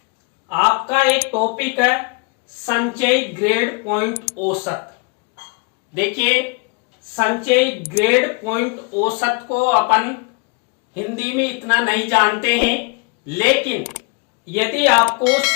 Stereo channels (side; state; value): right; quieter; 30.3 dB